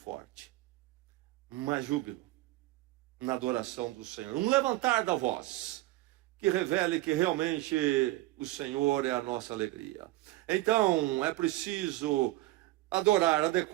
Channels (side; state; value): left; quieter; 18.0 dB